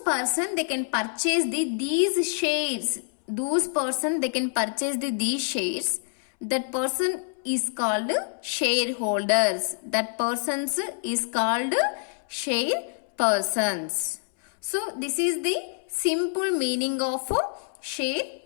they can purchase these shares. Those person they can purchase these shares. That person is called shareholders. That persons is called share persons. So this is the simple meaning of share.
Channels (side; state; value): right; silent; 61 dB below the other